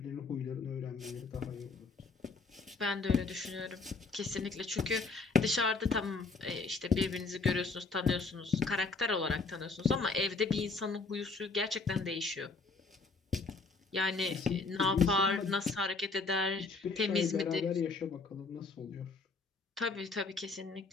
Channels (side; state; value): right; quieter; 4.1 dB